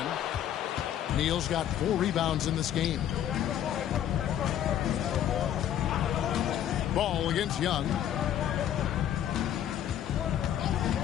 Neal's got 4 rebounds in this game. Ball against Young.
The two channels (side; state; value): right; quieter; 10.7 dB